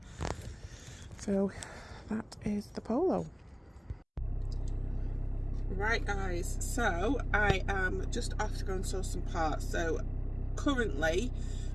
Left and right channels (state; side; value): identical; both; correlation 1.00